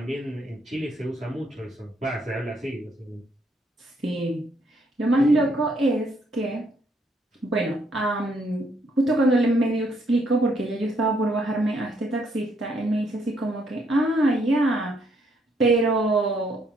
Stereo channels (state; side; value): normal; both; correlation 0.71